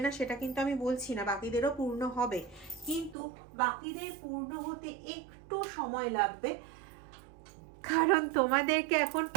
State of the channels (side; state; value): left; drops out; at 3.2 s